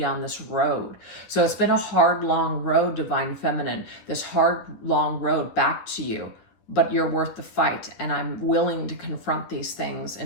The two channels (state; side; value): late; right; 10 ms